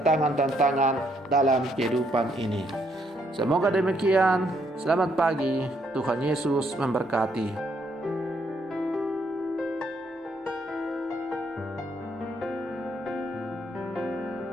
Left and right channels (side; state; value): both; normal; correlation 0.72